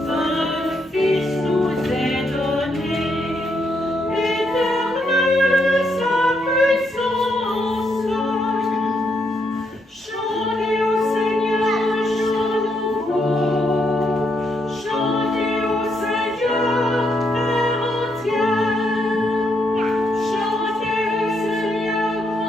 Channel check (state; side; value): normal; both; correlation 0.77